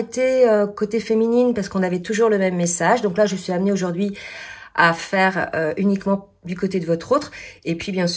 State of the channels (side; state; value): both; identical; correlation 1.00